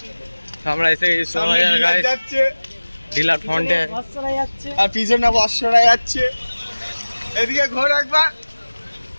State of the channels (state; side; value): inverted; both; correlation -1.00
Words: তো আমরা এসে গেছি সোনাবাজার গাইস, যাচ্ছে ডিলার ফ্রন্টে। আর পিছনে বর্ষরা যাচ্ছে। এদিকে ঘোর একবার।